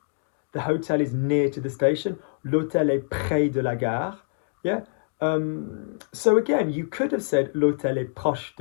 The hotel is near to the station. L'hôtel est près de la gare. Yeah. So again, you could have said l'hôtel est proche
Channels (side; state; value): right; silent; digital silence